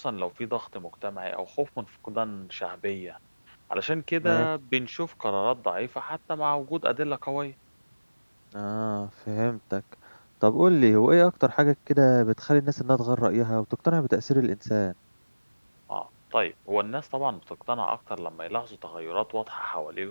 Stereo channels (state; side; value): inverted; both; correlation -1.00